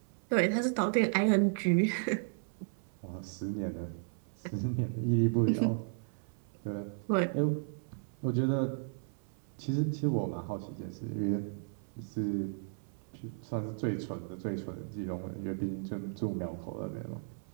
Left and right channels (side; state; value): left; silent; 55 dB below the other